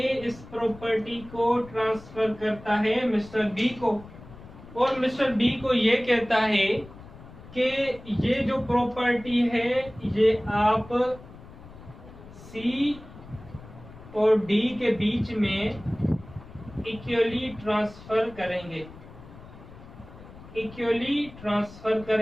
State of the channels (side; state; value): left; noise; rumble, 18 dB below the sound